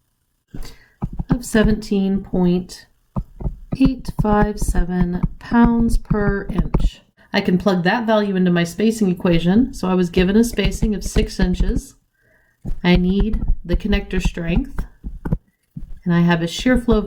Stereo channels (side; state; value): both; identical; correlation 1.00